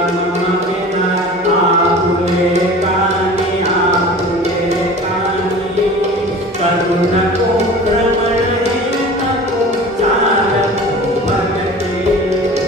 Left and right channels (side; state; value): both; normal; correlation 0.39